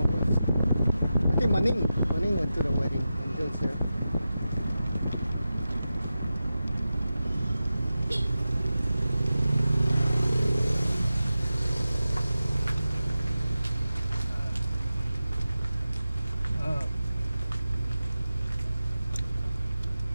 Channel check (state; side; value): inverted; both; correlation -0.93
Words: I think Maning went to the wedding and goes there.